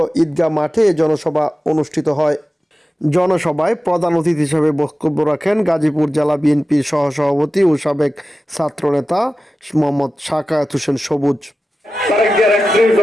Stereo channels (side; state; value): both; normal; correlation 0.94